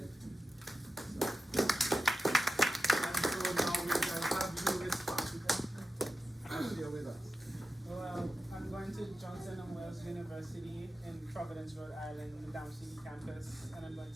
And so now we can have you respond and share with us. Well, I'm going to Johnson & Wales University in Providence, Rhode Island, the Down City campus, and I'm going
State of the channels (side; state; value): both; normal; correlation 0.92